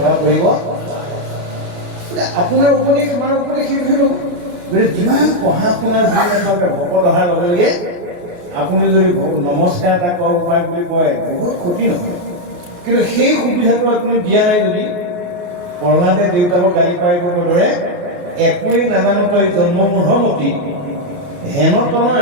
কৰিব আপোনাৰ উপদেশ আমাৰ উপদেশ সেইটোহে ল'ব। গতিকে যিমান পঢ়া শুনা যিমানকে ভকত অহাৰ লগে লগে আপুনি যদি নমস্কাৰ এটা কৰা উপায় বুলি কয় বহুত ক্ষতি নহয়, কিন্তু সেই সুবিধাটো আপুনি দিয়া নাই যদি প্ৰহ্লাদে দেউতাকক গালি পাৰিবৰ দৰে একোৱেই নাজানো তই জন্মমূঢ়মতি হেন তনয়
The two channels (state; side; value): late; left; 29 ms